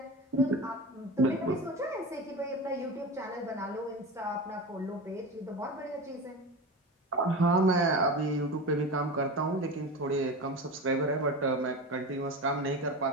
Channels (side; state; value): both; normal; correlation 0.26